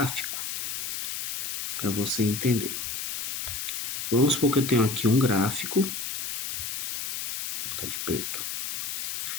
para você entender. Vamos supor que eu tenho aqui um gráfico, vou botar de preto.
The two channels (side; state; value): left; noise; hiss, 4 dB below the sound